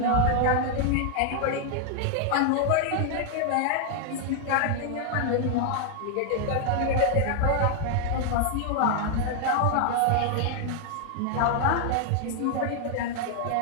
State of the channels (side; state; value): both; different; correlation 0.00